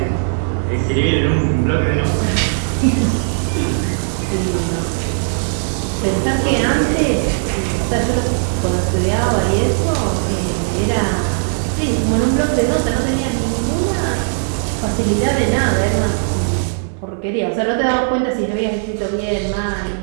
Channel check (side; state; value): left; silent; 68 dB below the other